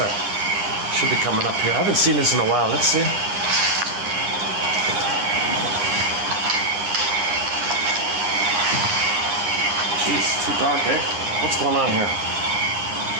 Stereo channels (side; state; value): left; late; 9.8 ms